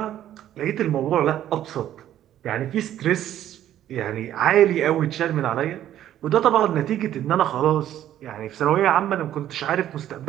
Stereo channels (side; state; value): left; quieter; 11.9 dB